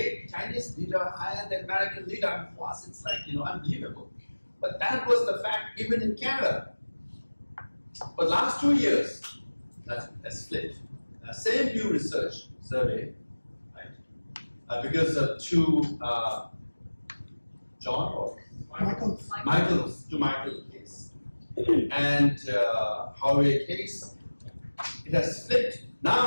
Chinese leader higher than American leader? For us, it's like, unbelievable. But that was the fact even in Canada. But last 2 years, that's flipped. Same Pew Research survey, right? Because of two John or Michael case and Huawei case, it has flipped.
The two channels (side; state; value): both; inverted; correlation -1.00